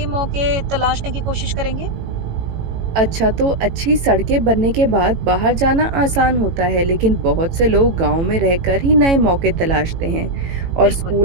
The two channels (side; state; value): left; late; 18 ms